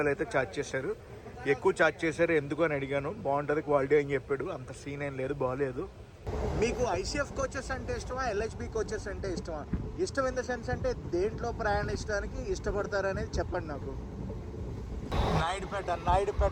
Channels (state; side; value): identical; both; correlation 1.00